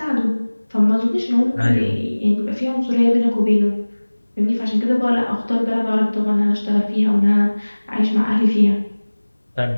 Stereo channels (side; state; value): both; inverted; correlation -1.00